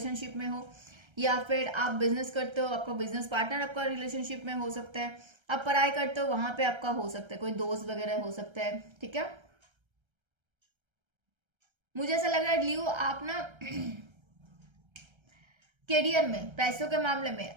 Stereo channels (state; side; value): late; left; 1.3 ms